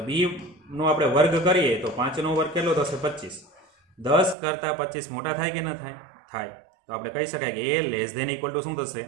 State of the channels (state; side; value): drops out; left; at 4.4 s